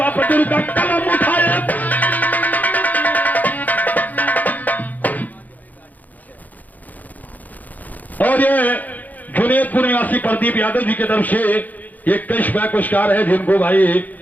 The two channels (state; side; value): late; right; 0.081 ms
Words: पर दुर्गा कलम उठाए, और ये जुनेदपुर निवासी प्रदीप यादव जी की तरफ से ये कैश बैक पुरस्कार है, जिनको भाई